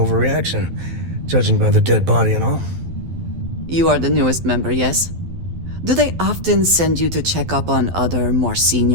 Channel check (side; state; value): left; late; 12 ms